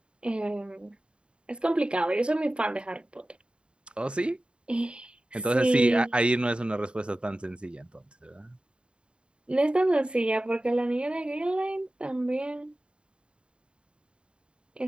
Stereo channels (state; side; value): late; left; 0.054 ms